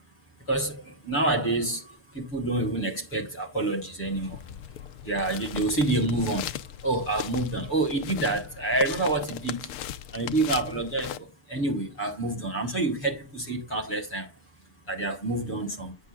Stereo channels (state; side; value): late; right; 6.8 ms